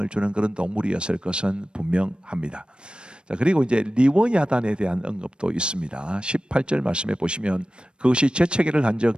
주는 그런 동물이었을 것은 분명합니다. 자, 그리고 이제 리워야단에 대한 언급도 있습니다. 18절 말씀에 보시면 그것이 재채기를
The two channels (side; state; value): left; late; 0.054 ms